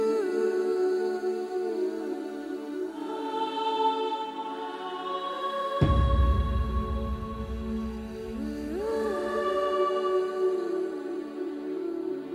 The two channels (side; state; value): both; identical; correlation 1.00